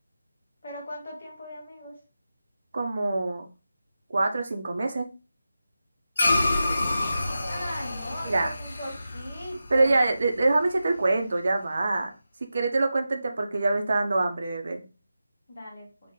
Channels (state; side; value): inverted; both; correlation -0.92